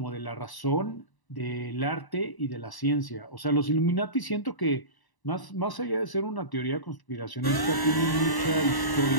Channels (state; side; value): late; right; 1.0 ms